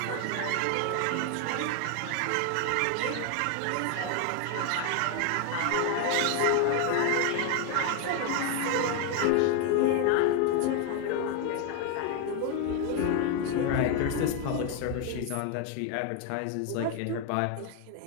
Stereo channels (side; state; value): both; different; correlation 0.01